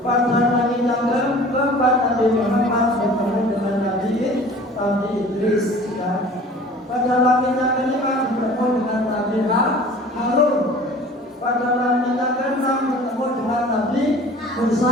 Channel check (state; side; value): normal; both; correlation 0.45